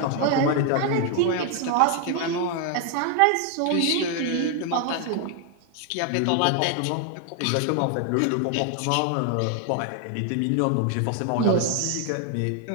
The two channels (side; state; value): both; different; correlation 0.00